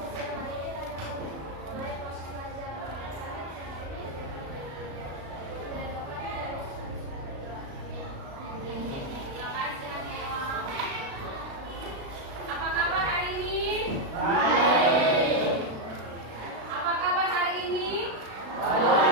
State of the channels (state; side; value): late; left; 36 ms